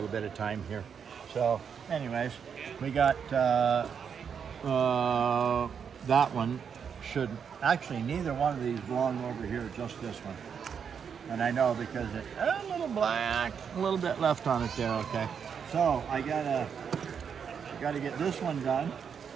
bit of time here. So, anyways, we got that one. Should actually neither one of these belong over here, just this one. And I know because it's a little black, a little bit left on it there. Okay, so I gotta get this one done.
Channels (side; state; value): left; quieter; 7.1 dB